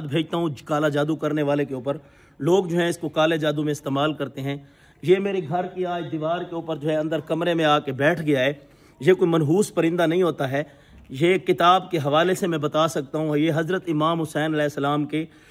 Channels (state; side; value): identical; both; correlation 1.00